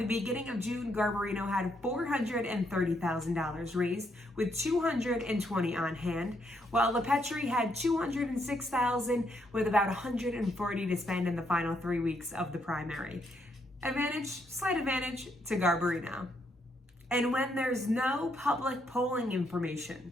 beginning of June, Garbarino had $430,000 raised, with $220 on hand, while Lepetri had $206,000 with about $140 to spend in the final 3 weeks of the primary. Slight advantage to Garbarino. And when there's no public polling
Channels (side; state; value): both; normal; correlation 0.75